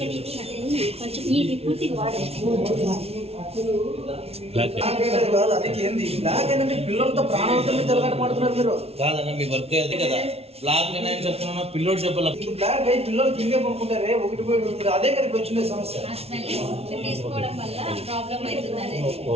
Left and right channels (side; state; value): left; late; 0.30 ms